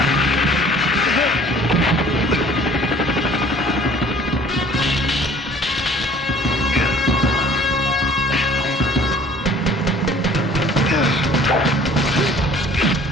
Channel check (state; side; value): normal; both; correlation 0.51